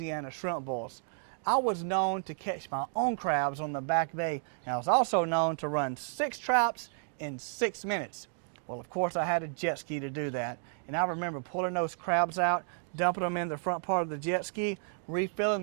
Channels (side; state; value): left; silent; 56 dB below the other